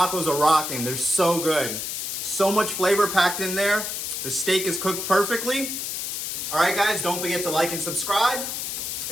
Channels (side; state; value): left; noise; hiss, 4 dB below the sound